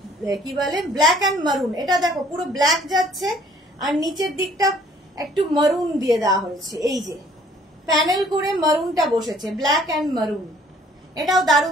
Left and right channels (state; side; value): normal; both; correlation 0.58